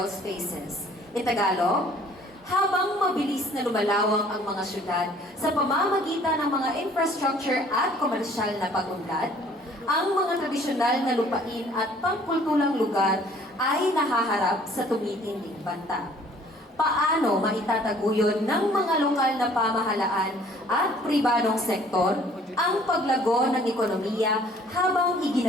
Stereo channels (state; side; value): normal; both; correlation 0.56